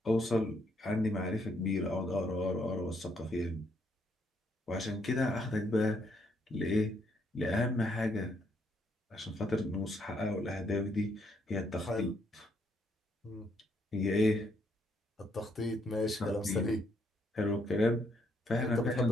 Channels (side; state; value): both; normal; correlation 0.73